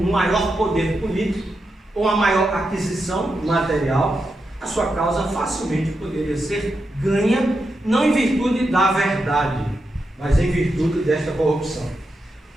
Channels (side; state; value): both; normal; correlation 0.86